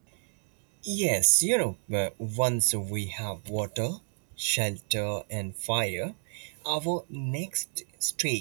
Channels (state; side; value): silent; left; digital silence